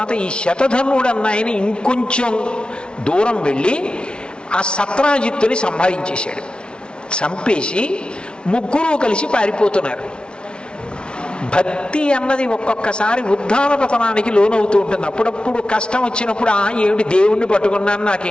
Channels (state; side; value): late; right; 0.056 ms